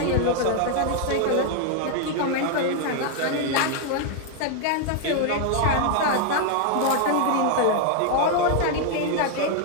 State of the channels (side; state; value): both; different; correlation 0.00